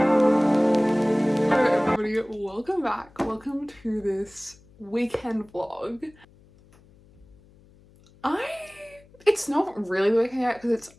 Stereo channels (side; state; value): left; noise; hum, 28 dB below the sound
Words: Hello everybody, welcome back. Welcome to this weekend vlog. It's not really the weekend yet because it's